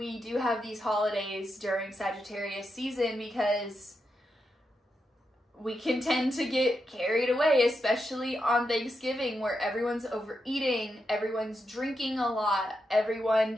do have these holidays during Sagittarius season, because we can tend to get carried away, especially on Thanksgiving, where everyone's overeating, everyone's drinking a lot,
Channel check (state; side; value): normal; both; correlation 0.85